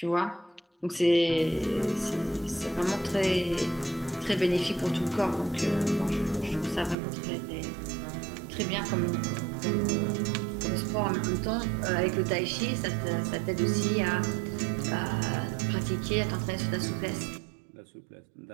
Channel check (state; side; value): drops out; left; at 7.0 s